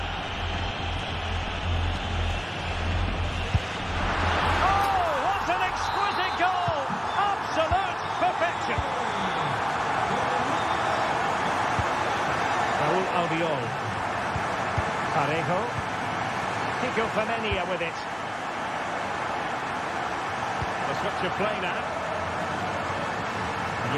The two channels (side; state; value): both; identical; correlation 1.00